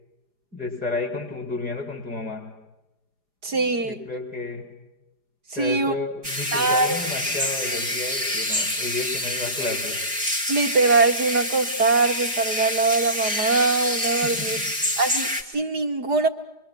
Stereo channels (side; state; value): left; late; 4.9 ms